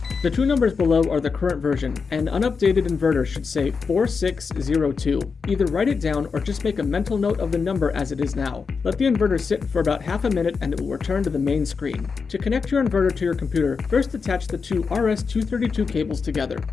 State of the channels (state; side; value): quieter; right; 5.2 dB